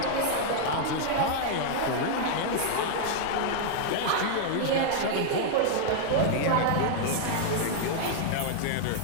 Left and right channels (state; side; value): different; both; correlation -0.01